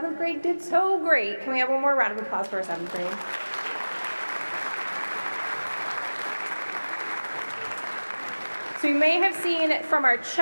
grade did so great. Can we have one more round of applause for our 7th grade? So you may have seen from our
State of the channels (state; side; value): inverted; both; correlation -1.00